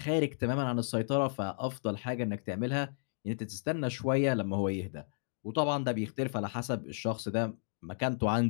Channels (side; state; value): right; silent; digital silence